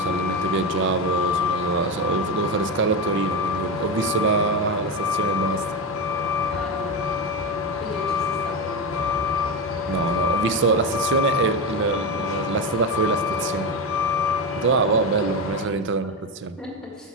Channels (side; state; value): both; normal; correlation 0.15